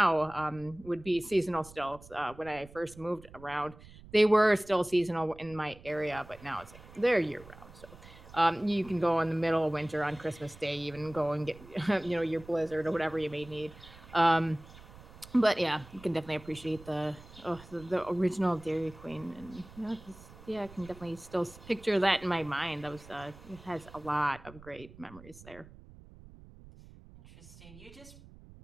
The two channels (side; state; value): right; noise; rumble, 20 dB below the sound